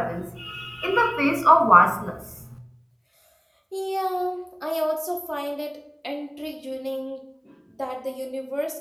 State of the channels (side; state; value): both; identical; correlation 1.00